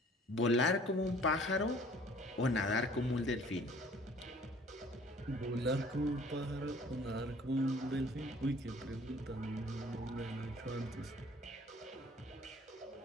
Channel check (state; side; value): normal; both; correlation 0.53